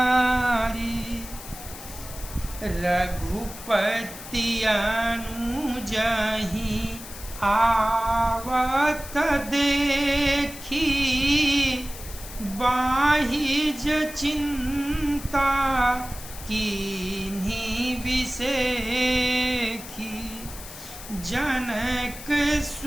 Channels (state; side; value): noise; left; hiss, 13 dB below the sound